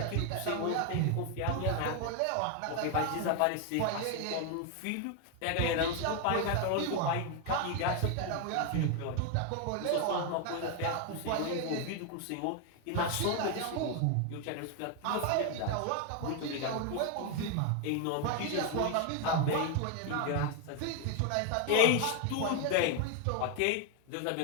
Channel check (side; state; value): both; different; correlation 0.01